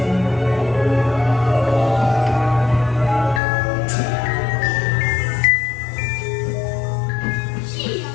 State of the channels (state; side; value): drops out; right; at 3.4 s